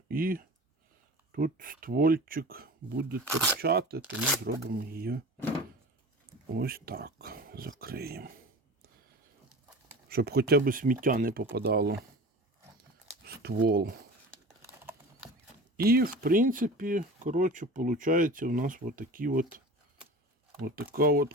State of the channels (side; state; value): both; normal; correlation 0.36